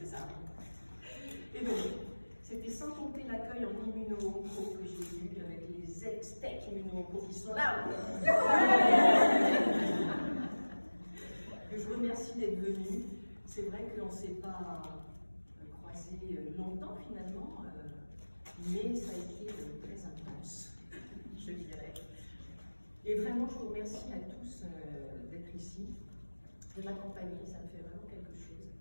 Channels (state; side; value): inverted; both; correlation -1.00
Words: ça? Et donc, c'était sans compter l'accueil en immuno-onco que j'ai eu avec les ex-tech immuno-onco qui sont là. Que je remercie d'être venus. C'est vrai qu'on ne s'est pas croisés longtemps finalement, mais ça a été très intense, je dirais. Et vraiment, je vous remercie à tous d'être ici, de m'accompagner, ça me fait vraiment quelque chose.